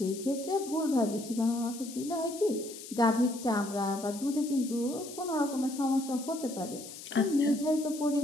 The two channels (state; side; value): noise; left; hiss, 13 dB below the sound